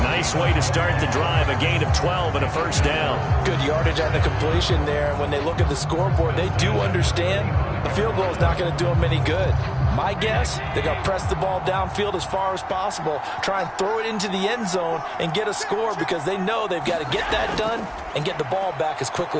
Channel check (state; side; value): identical; both; correlation 1.00